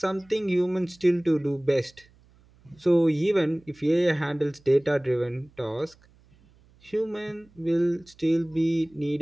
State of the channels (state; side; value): noise; right; hum, 30 dB below the sound